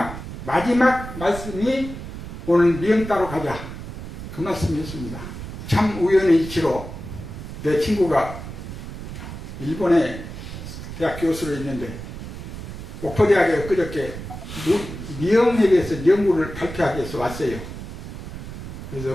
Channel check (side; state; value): right; noise; rumble, 10 dB below the sound